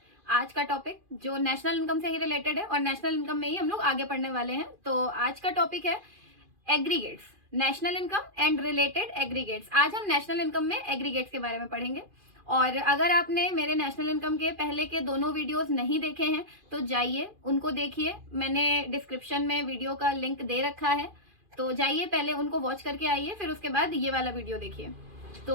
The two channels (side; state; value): left; late; 2.5 ms